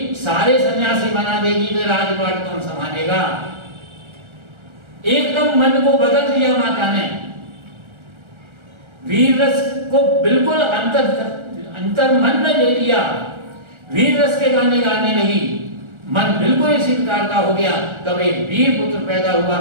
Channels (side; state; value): left; late; 1.3 ms